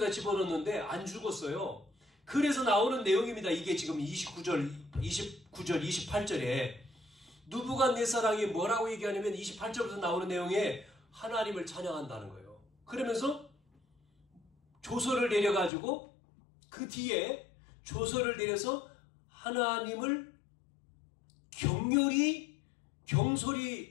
집어넣는데 안 죽었어요. 그래서 나오는 내용입니다. 이게 지금 29절, 28절에 느부갓네살이 뭐라고 얘기하냐면 28절부터 나오는 내용에 하나님을 찬양한다는 거예요. 그러면서 조서를 내려가지고 그 뒤에 조서를 내려서 하나님을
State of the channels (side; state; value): right; drops out; at 15.7 s